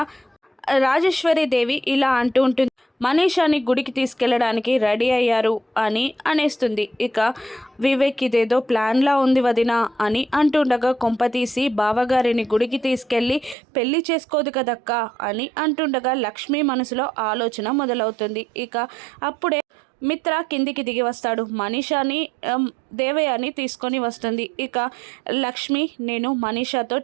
రాజేశ్వరి దేవి ఇలా అంటూ ఉంటుంది, మనీషాని గుడికి తీసుకెళ్ళడానికి రెడీ అయ్యారు అని అనేస్తుంది. ఇక వివేక్ ఇదేదో ప్లాన్లా ఉంది వదినా అని అంటుండగా కొంపతీసి బావగారిని గుడికి తీసుకెళ్ళి పెళ్లి చేసుకోదు కదక్క అని అంటుండగా లక్ష్మి మనసులో ఆలోచన మొదలవుతుంది. ఇక అప్పుడే మిత్ర కిందికి దిగి వస్తాడు. మనీషాని దేవయాని తీసుకొని వస్తుంది. ఇక లక్ష్మి నేను మనీషాతో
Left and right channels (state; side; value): drops out; left; at 13.6 s